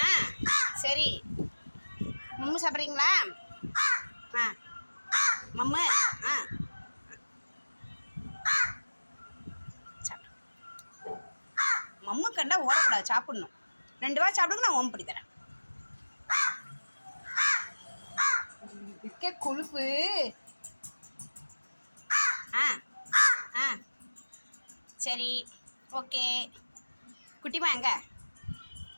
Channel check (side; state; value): both; inverted; correlation -1.00